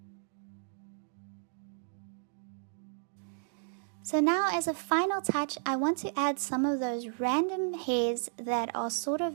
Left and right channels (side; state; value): left; silent; digital silence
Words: So now, as a final touch, I want to add some of those random hairs that are sort